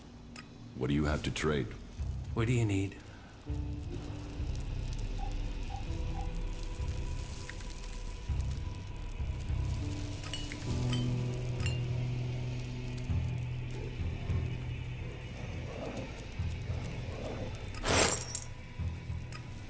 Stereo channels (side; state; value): both; identical; correlation 1.00